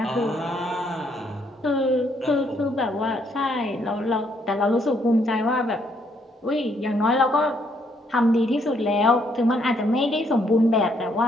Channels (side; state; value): both; normal; correlation 0.71